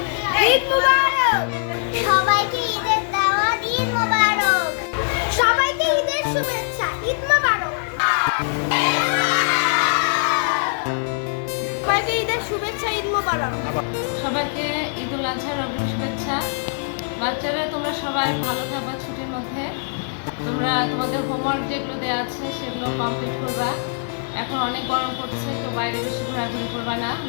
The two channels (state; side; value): silent; right; 64 dB below the other